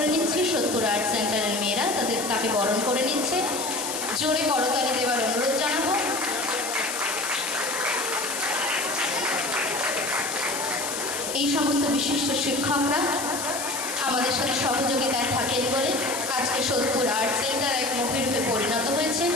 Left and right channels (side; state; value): left; noise; hiss, 5 dB below the sound